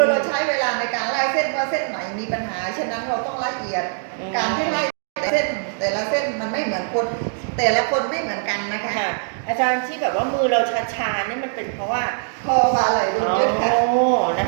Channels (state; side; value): silent; left; digital silence